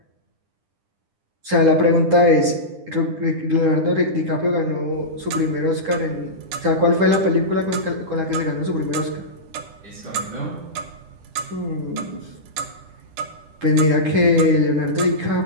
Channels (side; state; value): left; late; 10 ms